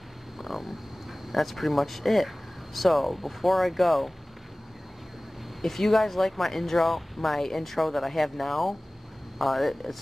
That's pretty much it. So before I go, if you guys like my intro that I have now,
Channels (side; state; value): both; normal; correlation 0.98